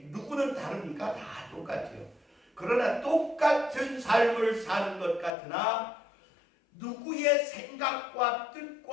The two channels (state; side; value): drops out; right; at 5.3 s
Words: 누구는 다르니까 다 똑같아요. 그러나 똑같은 삶을 사는 것 같으나 누구의 생각과